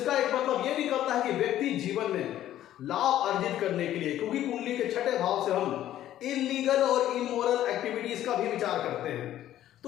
एक मतलब ये निकलता है कि व्यक्ति जीवन में लाभ अर्जित करने के लिए, क्योंकि कुंडली के छठे भाव से हम इलीगल और इमोरल एक्टिविटीज का भी विचार करते हैं।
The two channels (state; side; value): quieter; right; 12.5 dB